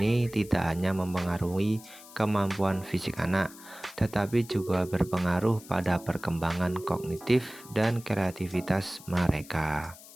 tidak hanya mempengaruhi kemampuan fisik anak, tetapi juga berpengaruh pada perkembangan kognitif dan kreativitas mereka.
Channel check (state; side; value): noise; left; hiss, 19 dB below the sound